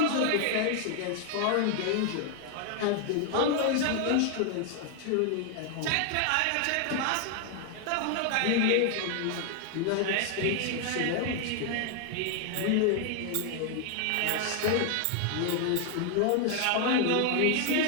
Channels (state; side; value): different; both; correlation 0.00